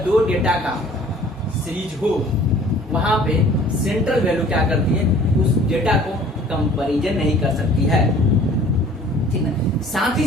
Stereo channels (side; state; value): both; normal; correlation 0.51